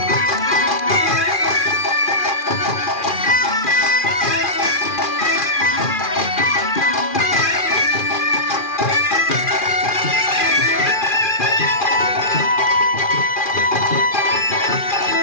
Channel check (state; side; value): late; right; 2.4 ms